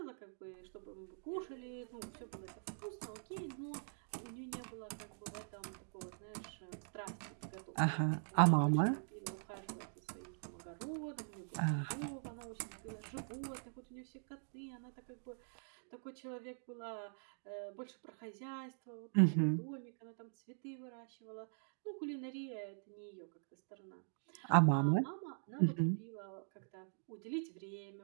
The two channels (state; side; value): silent; left; digital silence